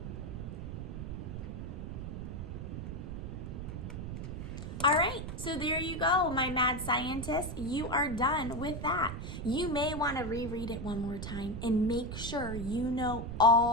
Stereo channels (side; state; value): right; noise; rumble, 6 dB below the sound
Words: All right, so there you go, my mad scientists. You are done with that. You may want to reread it one more time and make sure you know